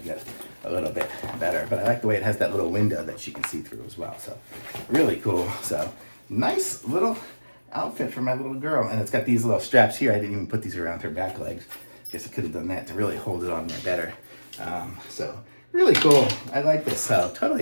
a little bit better. But I like the way it has that little window that she can see through as well. So really cool. So nice little outfit for my little girl. And it's got these little straps here. I didn't even put these around her back legs. Guess I could have done that to really hold it on there better. So really cool. I like this. So totally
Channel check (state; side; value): inverted; both; correlation -1.00